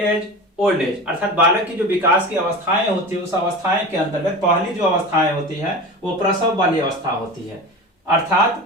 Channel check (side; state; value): both; normal; correlation 0.31